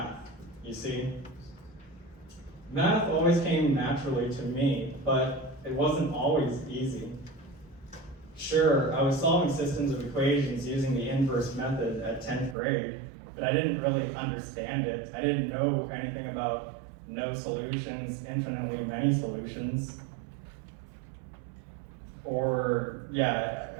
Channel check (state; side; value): drops out; left; at 12.6 s